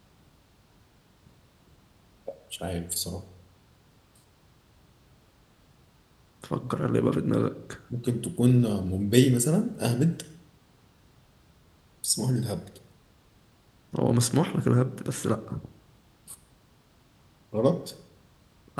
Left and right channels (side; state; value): both; identical; correlation 1.00